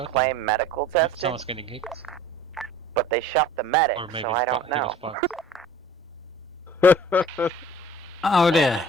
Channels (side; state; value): both; normal; correlation 0.47